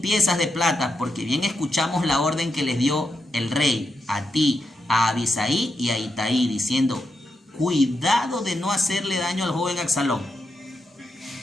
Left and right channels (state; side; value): normal; both; correlation 0.85